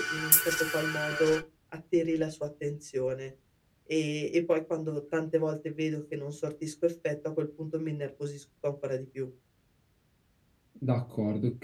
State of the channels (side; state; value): both; identical; correlation 1.00